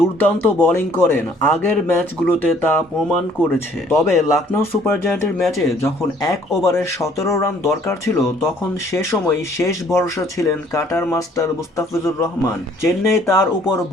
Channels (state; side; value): normal; both; correlation 0.60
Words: বোলিং করেন, আগের ম্যাচগুলোতে তা প্রমাণ করেছে। তবে লখনৌ সুপার জায়ান্টের ম্যাচে যখন এক ওভারে 17 রান দরকার ছিল, তখন সে সময় শেষ ভরসা ছিলেন কাটার মাস্টার মুস্তাফিজুর রহমান। চেন্নাই তার উপর